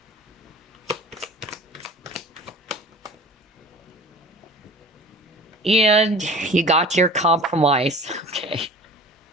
And you got your compromise. Okay.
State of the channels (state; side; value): normal; both; correlation 0.42